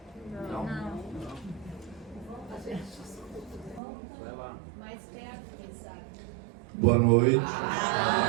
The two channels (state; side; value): drops out; left; at 3.8 s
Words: Não. Vai lá. Mais perto, quem sabe. Boa noite.